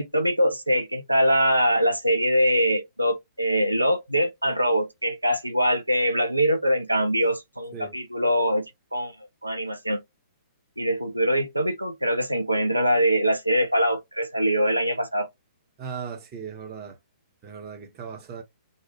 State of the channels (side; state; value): both; inverted; correlation -0.84